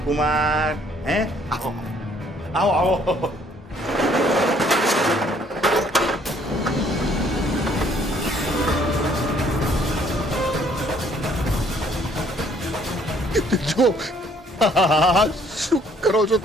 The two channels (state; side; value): normal; both; correlation 0.62